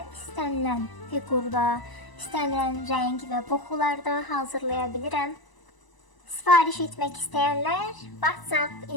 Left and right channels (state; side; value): late; right; 1.0 ms